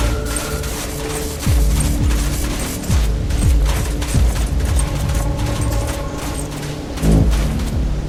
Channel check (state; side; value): identical; both; correlation 1.00